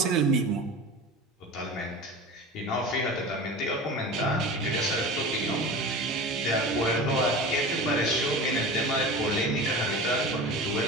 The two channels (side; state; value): both; normal; correlation 0.33